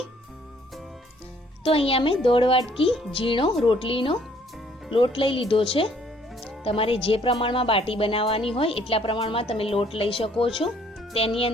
તો અહીંયા મેં 1.5 વાટકી ઝીણો રોટલીનો લોટ લઈ લીધો છે. તમારે જે પ્રમાણમાં બાટી બનાવવાની હોય એટલા પ્રમાણમાં તમે લોટ લઈ શકો છો. તેની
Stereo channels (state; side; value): normal; both; correlation 0.62